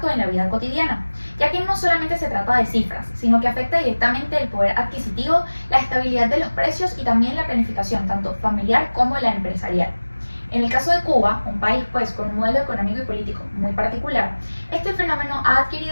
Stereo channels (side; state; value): both; inverted; correlation -1.00